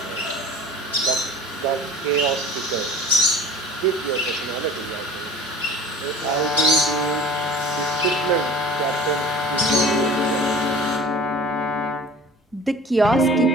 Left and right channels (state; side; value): normal; both; correlation 0.42